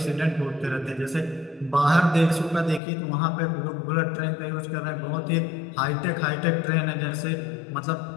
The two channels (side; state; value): right; drops out; at 2.8 s